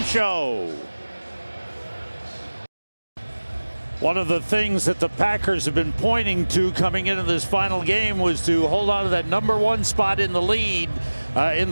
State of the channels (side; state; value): both; inverted; correlation -1.00